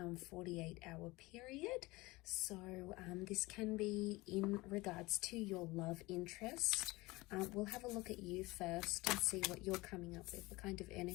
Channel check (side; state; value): right; quieter; 21.6 dB